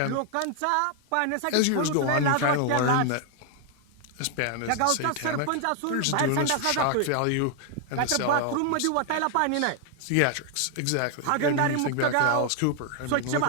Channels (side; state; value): both; different; correlation 0.00